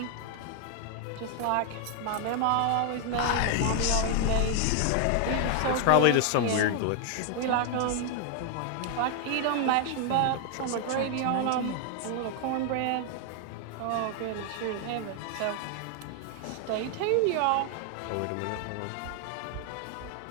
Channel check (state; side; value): different; both; correlation 0.00